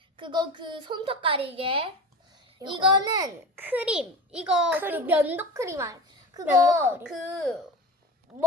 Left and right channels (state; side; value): normal; both; correlation 0.30